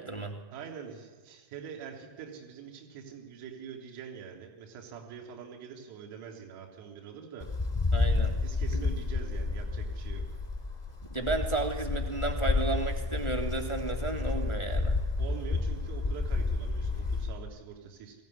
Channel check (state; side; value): late; right; 1.4 ms